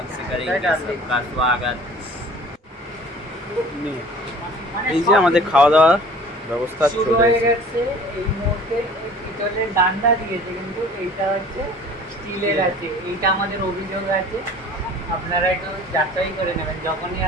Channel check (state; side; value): normal; both; correlation 0.47